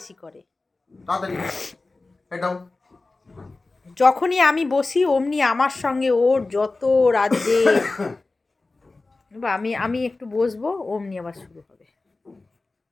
করে। তাড়াতাড়ি এটাও। যখনই আমি বসি অমনি আমার সঙ্গে ওর যত রাজ্যে আমি আমি একটু বসবো অমনি আবার শুরু হবে।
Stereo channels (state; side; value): quieter; right; 3.4 dB